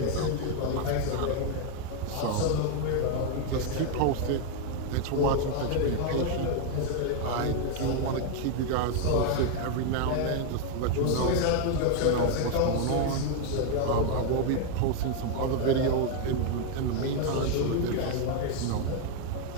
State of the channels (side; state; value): both; different; correlation 0.01